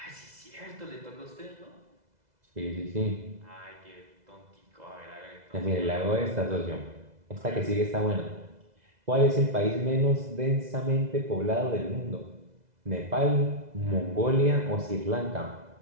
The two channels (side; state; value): left; late; 2.0 ms